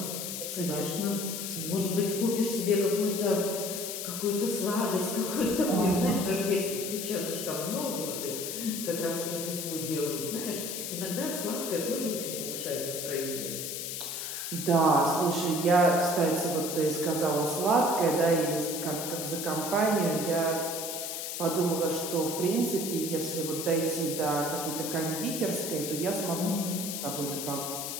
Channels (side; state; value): left; noise; hiss, 5 dB below the sound